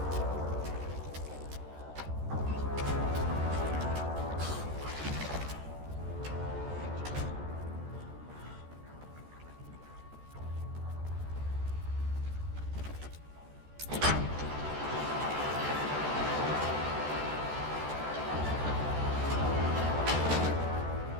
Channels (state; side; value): late; left; 14 ms